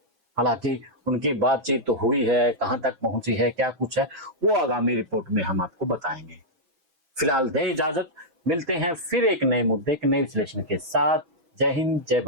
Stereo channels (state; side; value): late; left; 6.1 ms